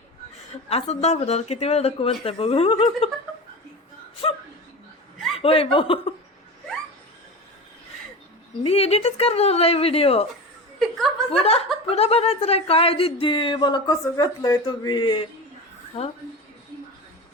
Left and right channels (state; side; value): normal; both; correlation 0.28